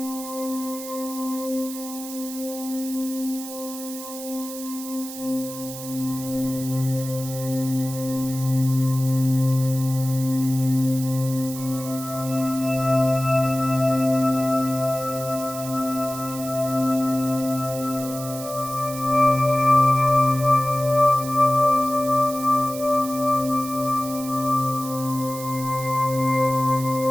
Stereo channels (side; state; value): right; noise; hiss, 11 dB below the sound